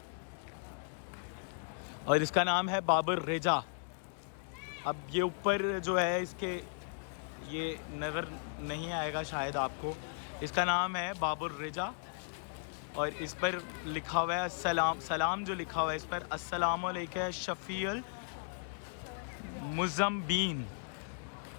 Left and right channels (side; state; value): right; silent; digital silence